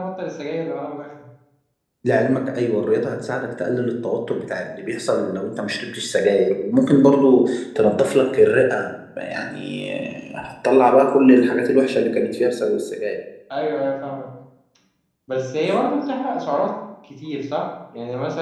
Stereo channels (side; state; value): both; identical; correlation 1.00